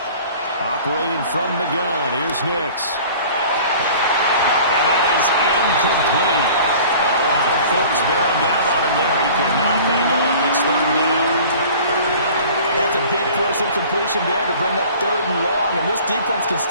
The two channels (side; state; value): both; inverted; correlation -0.45